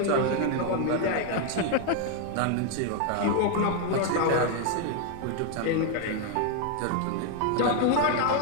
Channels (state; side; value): different; both; correlation 0.01